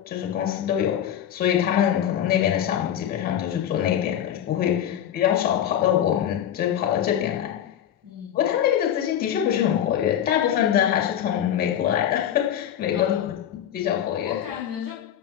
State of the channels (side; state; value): right; quieter; 10.2 dB